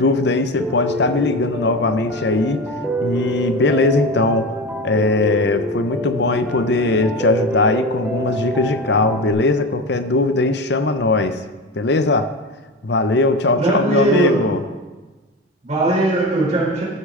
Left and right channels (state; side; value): normal; both; correlation 0.24